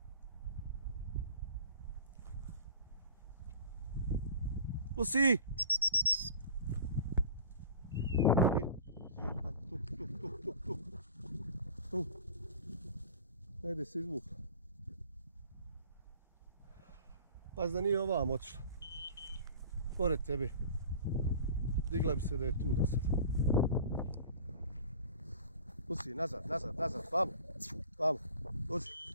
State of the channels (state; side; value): inverted; both; correlation -0.43